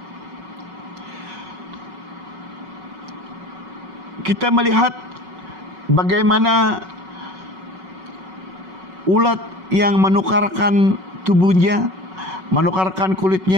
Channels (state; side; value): late; left; 5.4 ms